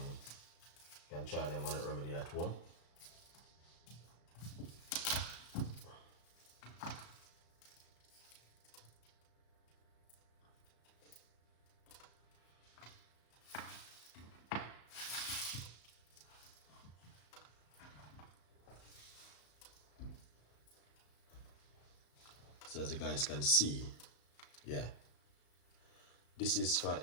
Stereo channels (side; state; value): right; late; 34 ms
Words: You can try them on a remedy at home. So as you guys can see, yeah, this is for